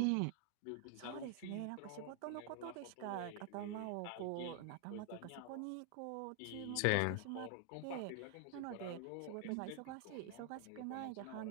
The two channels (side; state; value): both; different; correlation 0.00